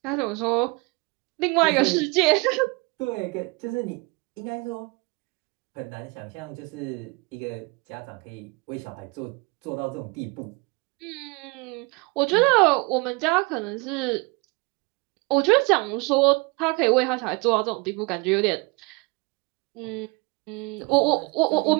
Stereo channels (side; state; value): left; quieter; 27.5 dB